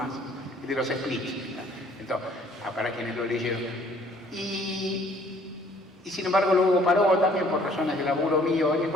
de los splits. Entonces, para quienes lo leyeron. Y sin embargo luego paró también por razones de laburo mío, y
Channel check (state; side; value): normal; both; correlation 0.58